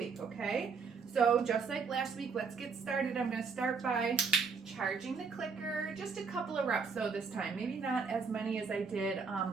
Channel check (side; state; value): left; quieter; 5.2 dB